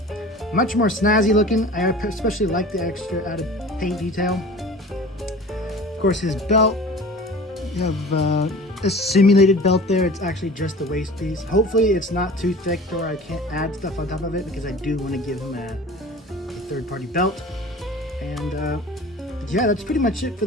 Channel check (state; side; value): normal; both; correlation 0.41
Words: much more snazzy looking. I especially like the extra added paint detail. Of course, his belt, you have a simulated belt there. It's actually just the waist piece. Hopefully it's not too thick or I can't add stuff on top of it, because I do want to give him a third-party belt. And yeah, that's pretty much it for